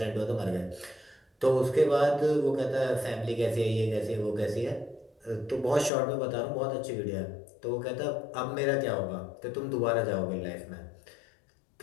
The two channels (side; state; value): right; drops out; at 5.9 s